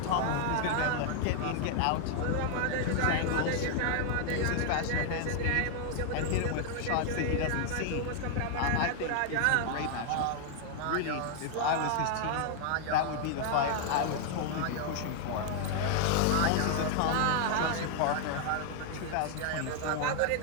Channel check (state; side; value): different; both; correlation 0.00